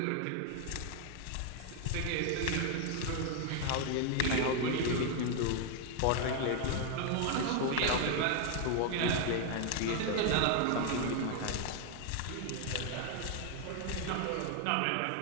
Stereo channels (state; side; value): different; both; correlation 0.00